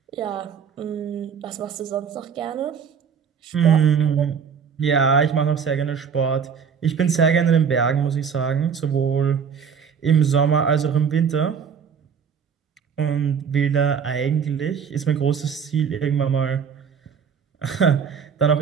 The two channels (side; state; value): left; quieter; 6.8 dB